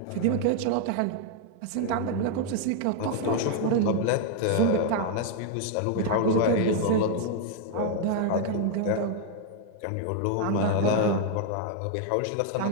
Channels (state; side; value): different; both; correlation 0.00